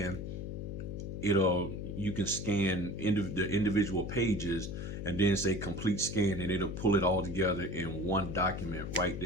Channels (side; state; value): left; noise; hum, 6 dB below the sound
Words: you can scan the individual pages and then say complete scan, and it'll pull it all together in one document right